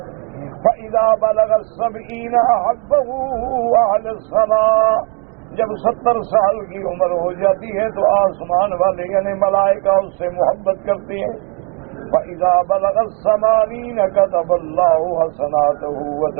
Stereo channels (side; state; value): left; quieter; 33.7 dB